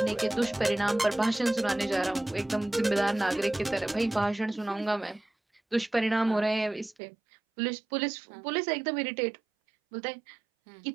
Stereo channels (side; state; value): left; drops out; at 7.0 s